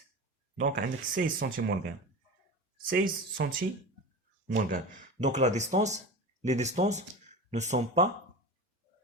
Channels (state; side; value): normal; both; correlation 0.29